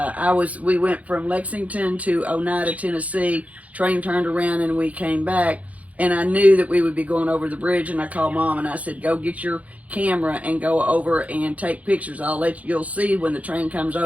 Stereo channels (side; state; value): left; late; 0.069 ms